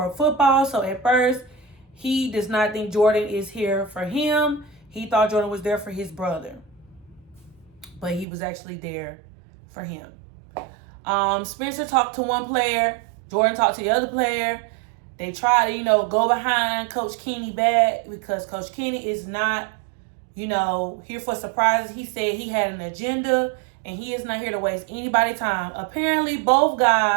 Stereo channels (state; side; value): drops out; left; at 8.2 s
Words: football. So at first, he does not think Jordan is here for him. He thought Jordan was there for his brother. But he was actually there for him. Spencer talked to one player. Jordan talked to the other player. They tried to, go behind Coach Kenny back because Coach Kenny is not, here for surprises. He said he had an agenda and he is not here to waste anybody's time. Apparently, both